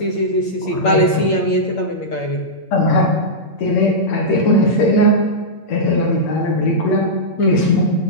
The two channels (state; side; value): late; right; 8.7 ms